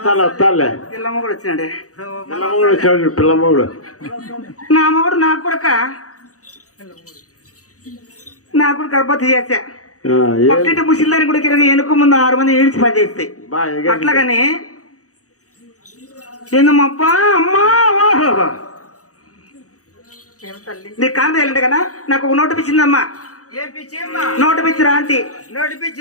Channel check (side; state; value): right; late; 0.66 ms